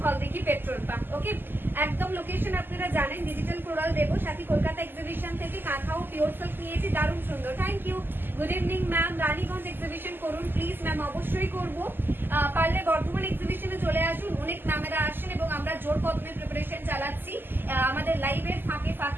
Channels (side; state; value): left; late; 0.095 ms